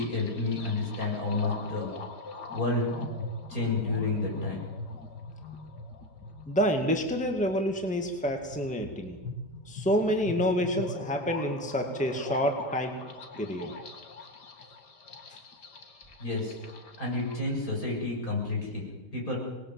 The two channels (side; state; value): both; normal; correlation 0.14